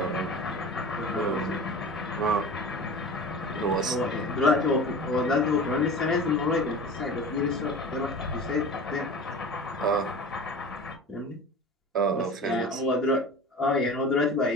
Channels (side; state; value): both; normal; correlation 0.36